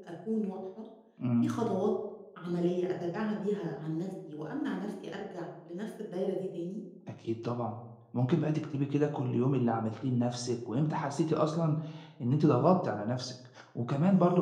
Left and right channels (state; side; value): identical; both; correlation 1.00